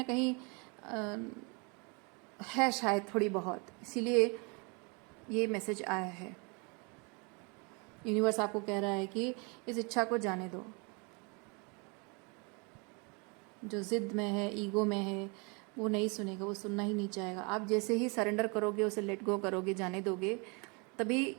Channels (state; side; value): quieter; left; 31.7 dB